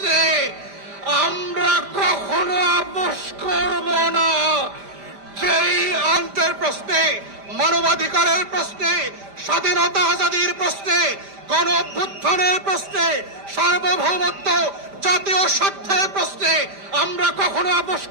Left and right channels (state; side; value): late; left; 5.0 ms